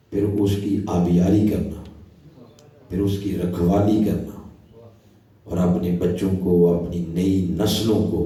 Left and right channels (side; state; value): both; identical; correlation 1.00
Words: پھر اس کی آبیاری کرنا، پھر اس کی رکھوالی کرنا، اور اپنے بچوں کو اپنی نئی نسلوں کو